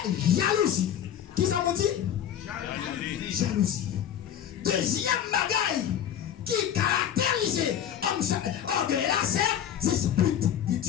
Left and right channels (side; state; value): right; quieter; 9.8 dB